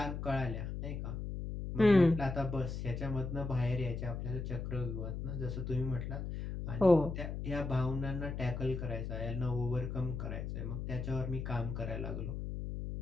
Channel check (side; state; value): left; noise; hum, 5 dB below the sound